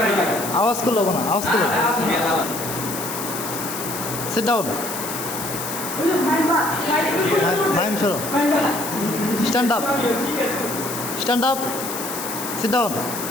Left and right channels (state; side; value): noise; left; hiss, 7 dB below the sound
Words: আওয়াজ করলো না আওয়াজ করলো সিট ডাউন মাইম সরো stand up stand up sit down